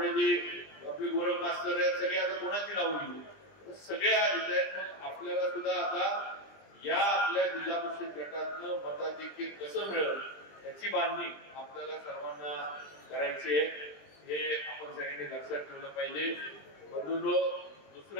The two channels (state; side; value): late; right; 20 ms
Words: आपले गोरख मास्तर आहेत सगळे. आता कोणाची नाव घेऊ सगळे आहेत. आपल्याला सुद्धा आता या आपल्या जिल्हा परिषद गटातनं मताधिक्य कसं मिळेल याची बांधणी आपल्याला सर्वांना करायची आहे. हे आपण सगळ्यांनी लक्षात ठेवलं पाहिजे. बंधूंनो